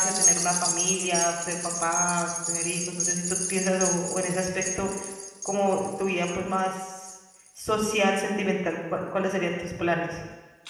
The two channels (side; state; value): both; identical; correlation 1.00